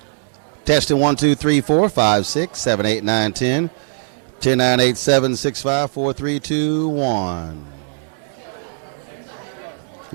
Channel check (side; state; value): left; silent; 65 dB below the other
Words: Testing 1, 2, 3, 4, 5, 6, 7, 8, 9, 10. 10, 9, 8, 7, 6, 5, 4, 3, 2, 1.